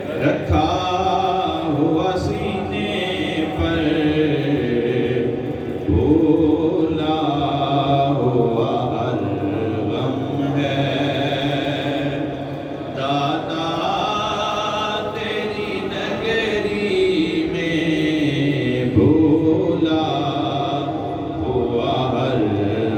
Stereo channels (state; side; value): identical; both; correlation 1.00